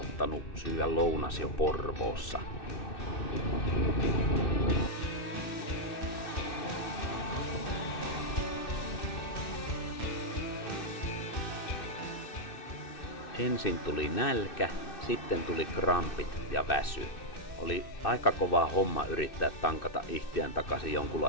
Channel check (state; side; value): late; right; 2.6 ms